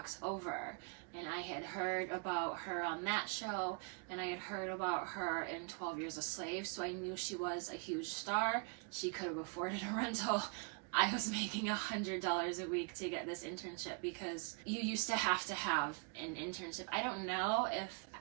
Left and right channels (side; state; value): left; quieter; 35.5 dB